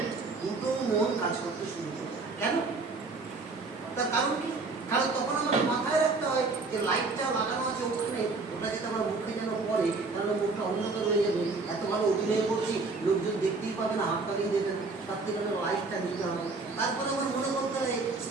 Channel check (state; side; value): quieter; left; 3.9 dB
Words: দুটো মন কাজ করতে শুরু করে। কেন? তার কারণ কি? কারণ তখন আমাদের মাথায় রাখতে হয় যে লাইটটা লাগানো আছে ওখানে, ওটা যদি আমার মুখে যেন পড়ে তাহলে মুখটা অন্ধকার হয়ে যাবে। এত ভালো অভিনয় করছি, লোকজন দেখতেই পাবে না, হাত তালিয়ে দেবে না, তার থেকে আমার লাইটটা নিতে হবে। তারপরে আমার মনে করতে হয়